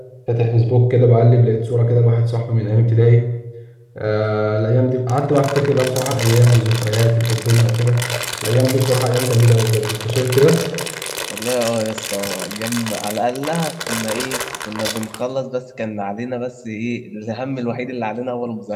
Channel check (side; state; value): both; identical; correlation 1.00